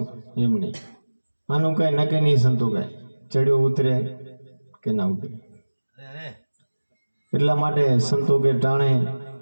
એમ નહીં. આનું કઈ નક્કી નહીં સંતો કઈ ચડ્યો ઉતરે કે ના ઉતરે. એટલા માટે સંતો કે ટાણે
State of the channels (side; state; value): both; inverted; correlation -1.00